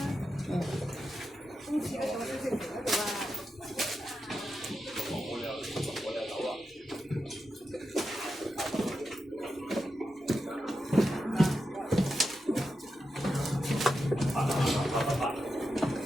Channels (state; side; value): normal; both; correlation 0.88